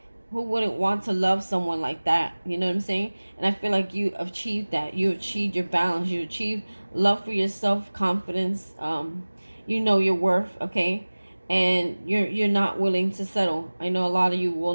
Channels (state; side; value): inverted; both; correlation -1.00